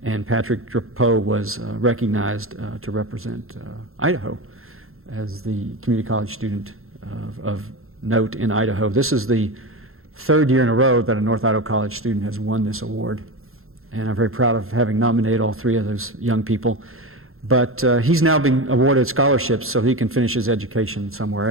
And Patrick Drapeau was recognized to represent Idaho as the community college student of note in Idaho. This is the 3rd year in a row that a North Idaho College student has won this award. And I'm very proud of having nominated all 3 of those young people. But he's now being awarded scholarships so he can finish his education somewhere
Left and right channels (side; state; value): left; late; 0.61 ms